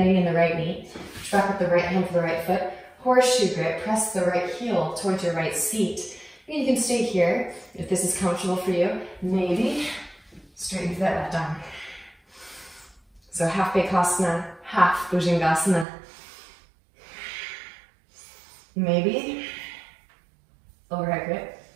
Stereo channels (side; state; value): left; drops out; at 15.9 s